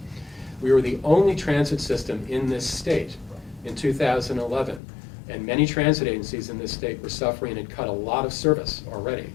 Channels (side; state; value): right; drops out; at 4.8 s